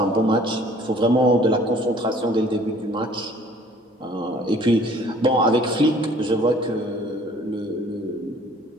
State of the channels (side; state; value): both; normal; correlation 0.54